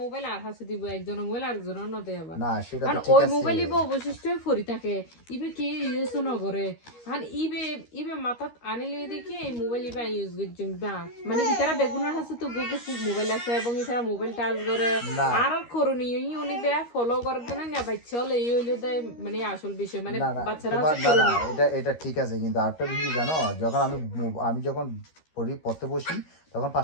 মোবাইল আর হাসে দিব, একজনের মোবাইল আরেকজনের ন দেয় আবার। না সেটা আর তো ঠিক ওই আছে। মোবাইল ইবে অবশিষ্ট ফরি থাকে, ইবে কি ইউজ নগরে, আর ইবে ইবে মাথাত আনিলে দেখি এই মোবাইল ইবে ইউজ করছেন না, মানে ইতারা বেগুনের হাসে তো গুগল মোবাইল আছে এবং ইতারা মোবাইল টাচ করে না আর করণীয় ই উনি বে ফলো করে দেন না বাচ্চা হলে এই হইলে মানে আসল বিষয়, মানে না না বাচ্চারা তোমার হচ্ছে না না করণীয়। এটা এটা ঠিক আছে, কিন্তু আরেকটা বিষয় জানো, যখন আমি যখন পড়তে বসি তখন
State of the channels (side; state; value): right; late; 13 ms